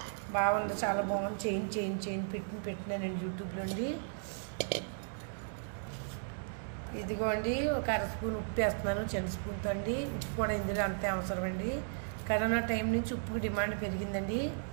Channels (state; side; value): silent; left; digital silence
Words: బాగుంది, చాలా బాగుంది. చేయించి పెట్టినానండి యూట్యూబ్లో అండి. ఇదిగోండి ఒక 1/2 స్పూన్ ఉప్పు వేస్తున్నాను, చిన్న స్పూన్తో అండి. ఉప్పు కూడా ఇందులో అంతే అవసరం అండి. కరోనా టైం నుంచి ఉప్పుకి డిమాండ్ పెరిగిందండి.